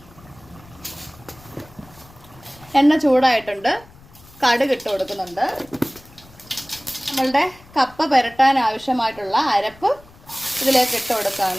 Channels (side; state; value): left; noise; rumble, 24 dB below the sound